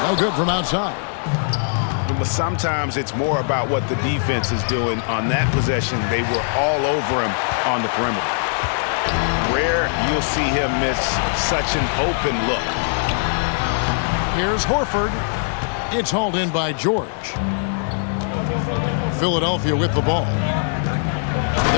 No good from outside. But sometimes it's more about what the defense is doing. On that possession, they were all over him on the perimeter. Rare you'll see him miss such an open look. Here's Horford. It's hauled in by George. Philadelphia with the ball.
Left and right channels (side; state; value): right; silent; 65 dB below the other